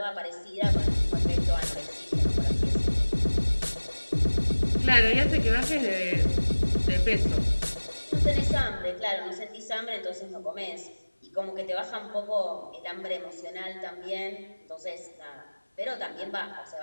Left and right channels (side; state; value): both; inverted; correlation -1.00